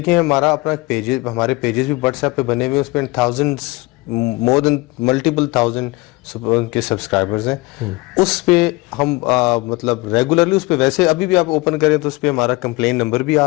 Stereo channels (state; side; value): quieter; right; 23.2 dB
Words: ہیں، ہمارا اپنا پیجز، ہمارے پیجز بھی واٹس ایپ پہ بنے ہوئے، اس پہ تھاؤزنڈس، مور دین ملٹیپل تھاؤزنڈ کے سبسکرائبرز ہیں. اس پہ ہم مطلب ریگولرلی اس پہ، ویسے ابھی بھی آپ اوپن کریں تو اس پہ ہمارا کمپلین نمبر بھی